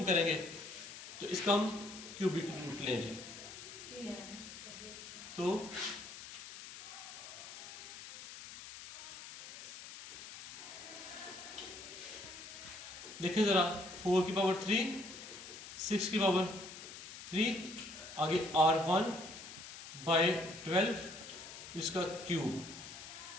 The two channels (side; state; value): left; noise; hiss, 12 dB below the sound